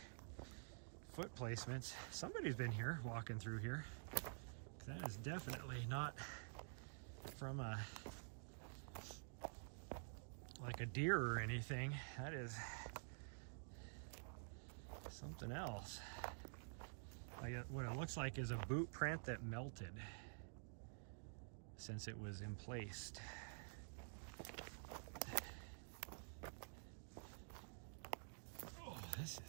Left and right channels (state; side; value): silent; left; digital silence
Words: foot placements. Somebody's been here, walking through here. That is definitely not from like a deer or anything. That is something else. Like what it looks like is a boot print that melted since it was emplaced. Oh, this